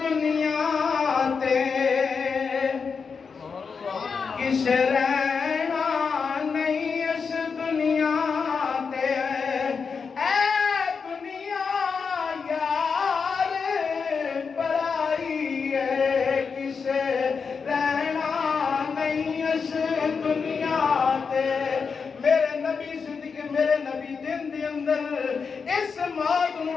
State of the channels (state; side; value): quieter; right; 5.5 dB